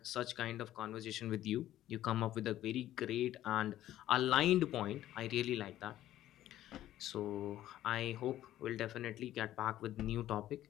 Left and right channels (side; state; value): right; quieter; 13.4 dB